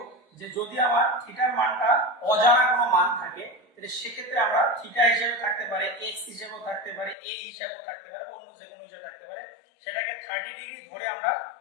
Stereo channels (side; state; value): right; drops out; at 7.2 s